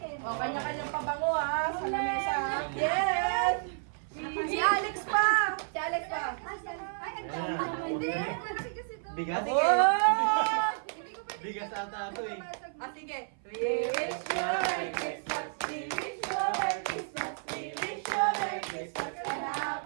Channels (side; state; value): left; silent; 55 dB below the other